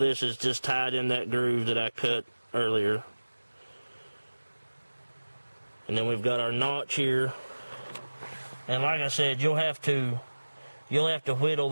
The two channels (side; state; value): both; inverted; correlation -1.00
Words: is just tied in that groove that I cut earlier. And then we've got our notch here. And like I said, you'll have to whittle